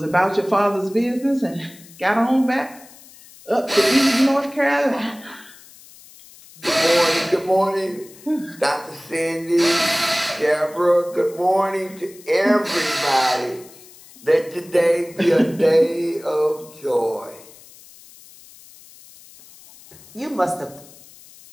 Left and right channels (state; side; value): noise; left; hiss, 22 dB below the sound